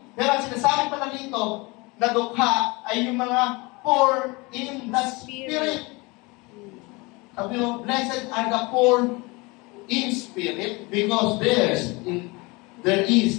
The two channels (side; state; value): right; quieter; 25.5 dB